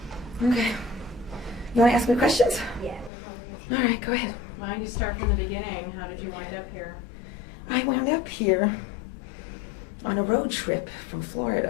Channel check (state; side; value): drops out; right; at 3.1 s